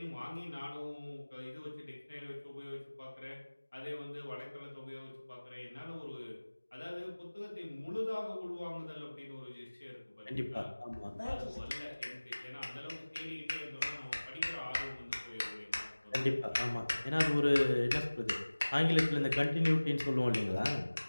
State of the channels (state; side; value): inverted; both; correlation -1.00